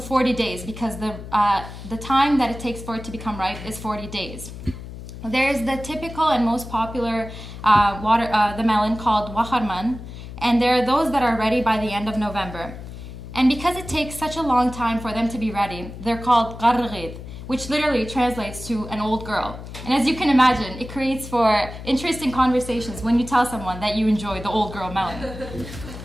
days because the time that it takes for it to become ripe is 40 days. There's the typical and most popular the melon called waharman, and there are those that are ready by the end of November. And because it takes such a long time for them to be ready, they're called qarrgid, which literally translates to an old girl. And as you can imagine, it creates for interesting conversations when you tell someone that you enjoy the old girl melon.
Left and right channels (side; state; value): left; noise; hum, 12 dB below the sound